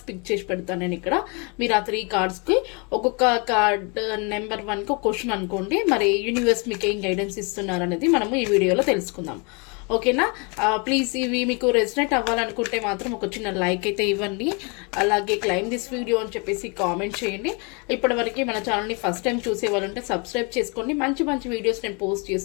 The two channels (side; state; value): right; quieter; 32.7 dB